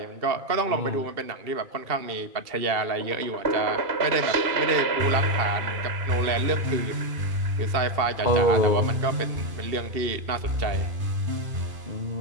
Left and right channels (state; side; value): late; left; 2.7 ms